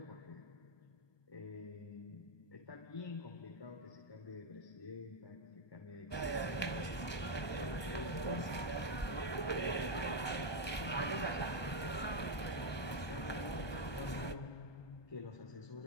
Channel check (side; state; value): right; late; 1.2 ms